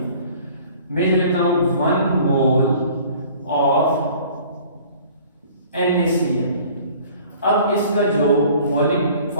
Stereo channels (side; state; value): both; inverted; correlation -0.51